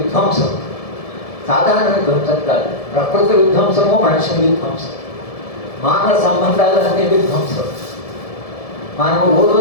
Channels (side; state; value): right; late; 1.7 ms